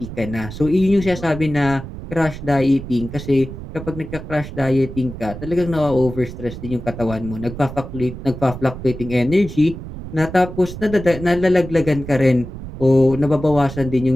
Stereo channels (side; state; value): right; noise; rumble, 11 dB below the sound